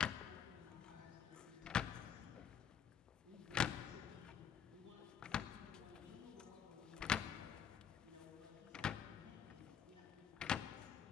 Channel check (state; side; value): quieter; right; 8.1 dB